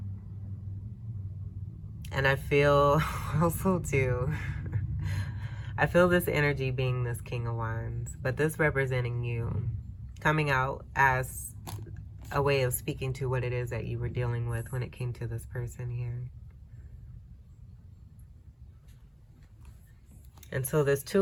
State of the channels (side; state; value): both; identical; correlation 1.00